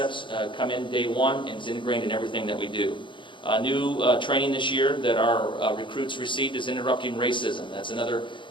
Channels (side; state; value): right; late; 0.24 ms